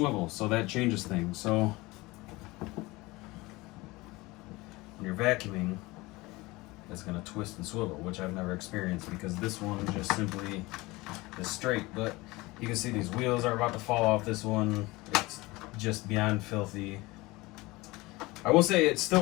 so that changes things. So when you're vacuuming, it's going to twist and swivel, which I've never experienced because this one just simply is straight. But you can see these wheels are about to fall off this one. It's just beyond filthy. I will say it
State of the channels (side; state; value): right; quieter; 21.7 dB